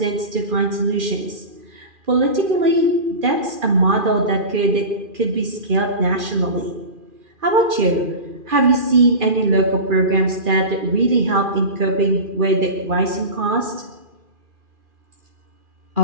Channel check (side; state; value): left; late; 2.4 ms